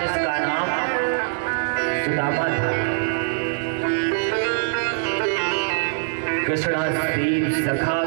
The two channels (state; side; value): silent; left; 64 dB below the other